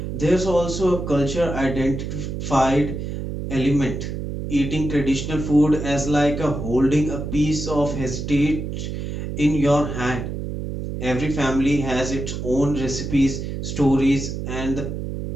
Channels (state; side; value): noise; right; hum, 5 dB below the sound